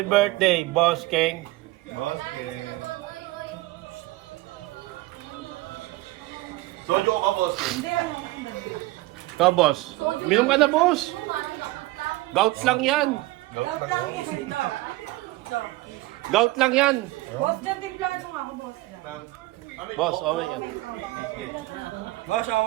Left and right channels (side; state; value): left; quieter; 19.4 dB